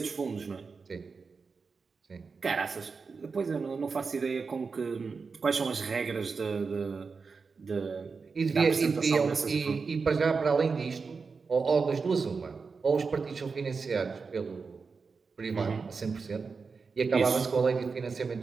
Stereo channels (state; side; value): quieter; left; 4.9 dB